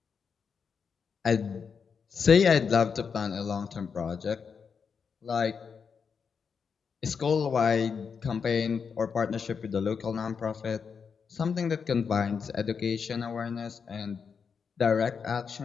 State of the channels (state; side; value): quieter; right; 6.1 dB